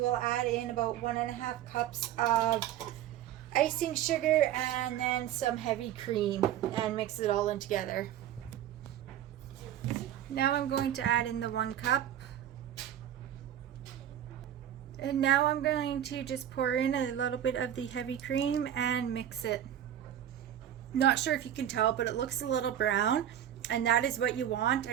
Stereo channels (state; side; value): quieter; left; 11.0 dB